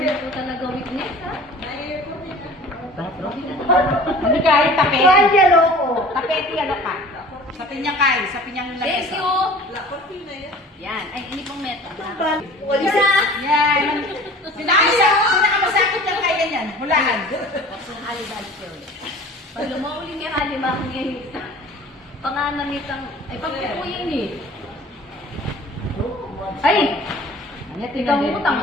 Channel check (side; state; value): both; normal; correlation 0.45